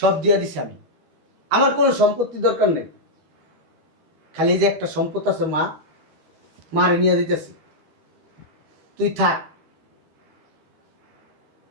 দিয়ে দিছি আমি, আমার কোনো সম্পত্তি দরকার নেই। খালি যে একটা সম্পদ আছে মা, মারে নিয়ে দিতেছি, তুই থাক,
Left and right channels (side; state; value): left; late; 13 ms